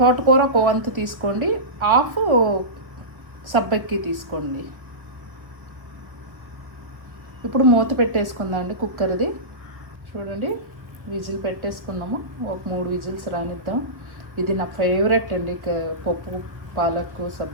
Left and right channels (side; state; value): left; late; 1.4 ms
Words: తోటకూర 1 వంతు తీసుకోండి. హాఫ్ సబ్బక్కి తీసుకోండి. ఇప్పుడు మూత పెట్టేసుకుందాం అండి కుక్కర్ది. చూడండి, విజిల్ పెట్టేసుకున్నాము. ఒక 3 విజిల్స్ రానిద్దాం. ఇది నా ఫేవరెట్ అండి, పప్పు పాలక్కు